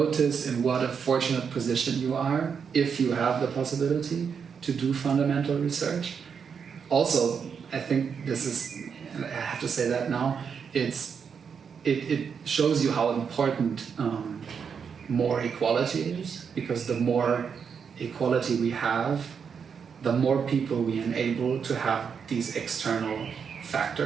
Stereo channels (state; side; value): quieter; left; 6.6 dB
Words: in what a fortunate position you are if you have the possibility to do fundamental research. Also, I think this is, and I have to say that now, it shows you how important more equality is, because the more equality we have, the more people we enable to have these external